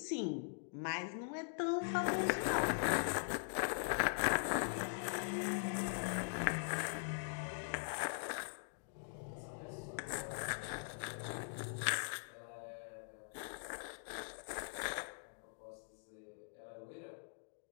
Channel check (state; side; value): silent; right; digital silence